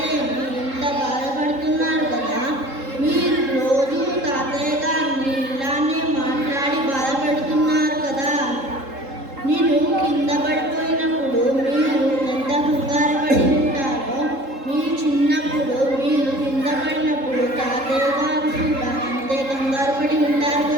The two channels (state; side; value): late; left; 3.7 ms